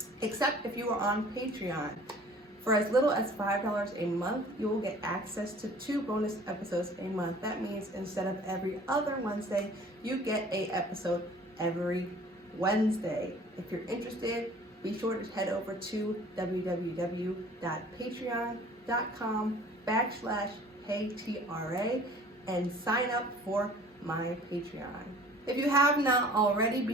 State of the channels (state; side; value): normal; both; correlation 0.49